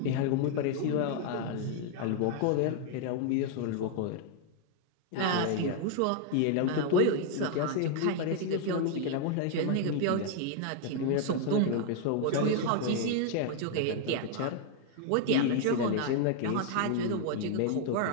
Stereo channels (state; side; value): different; both; correlation 0.00